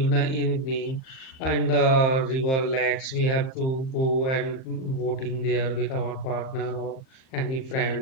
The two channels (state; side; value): late; right; 38 ms